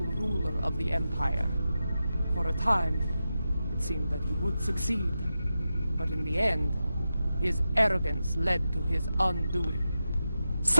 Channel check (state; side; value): inverted; both; correlation -0.91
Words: ruler of the Empire. For a time, it seemed that he would succeed. But in the end, his arrogance led to his undoing.